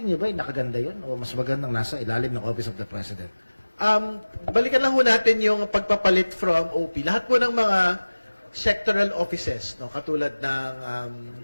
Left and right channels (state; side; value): inverted; both; correlation -1.00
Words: niyo ba, nakaganda yun? O mas magandang nasa ilalim ng Office of the President? Balikan lang ho natin yung pagpapalit from OP. Lahat po ng mga sectoral offices, no, katulad ng